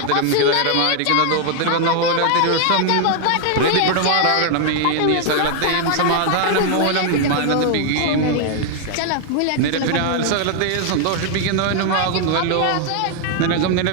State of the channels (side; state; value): both; different; correlation 0.00